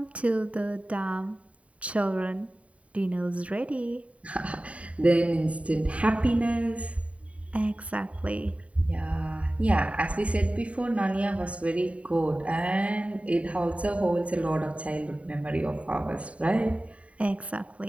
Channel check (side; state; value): left; late; 0.065 ms